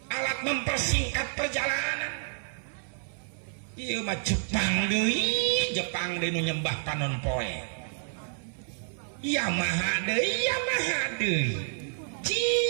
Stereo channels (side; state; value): left; silent; 58 dB below the other